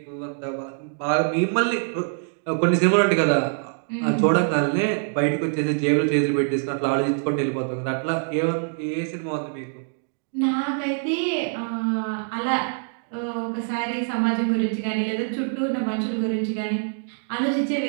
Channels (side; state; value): left; silent; 61 dB below the other